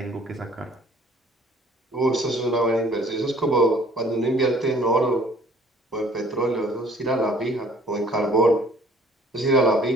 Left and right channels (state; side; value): normal; both; correlation 0.55